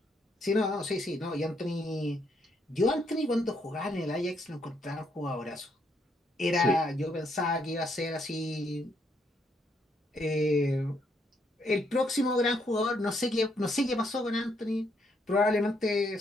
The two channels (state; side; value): normal; both; correlation 0.74